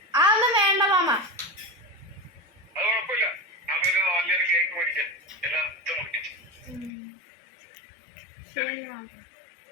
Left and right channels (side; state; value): right; drops out; at 6.9 s